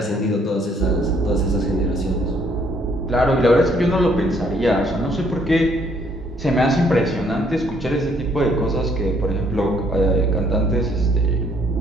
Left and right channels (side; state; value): both; normal; correlation 0.66